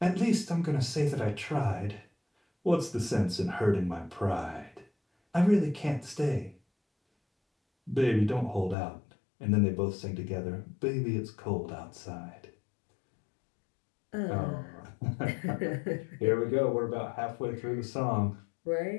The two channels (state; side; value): drops out; right; at 8.8 s